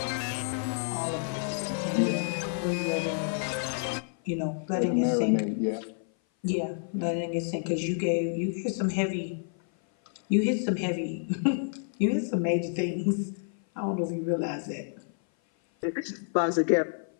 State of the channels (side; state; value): right; silent; 56 dB below the other